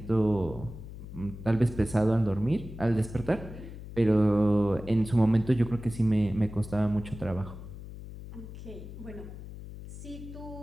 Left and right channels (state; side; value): noise; left; hum, 12 dB below the sound